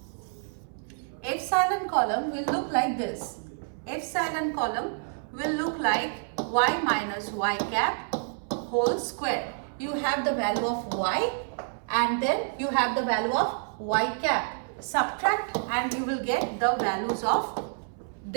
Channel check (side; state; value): left; silent; 59 dB below the other